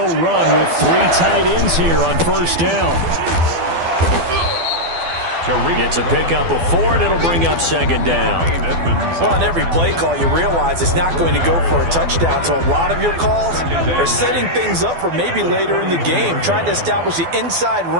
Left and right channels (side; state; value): left; late; 12 ms